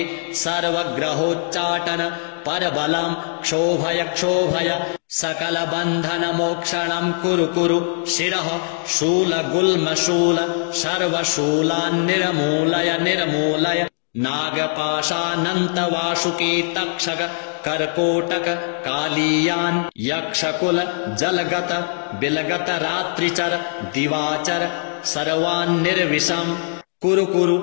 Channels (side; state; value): right; silent; digital silence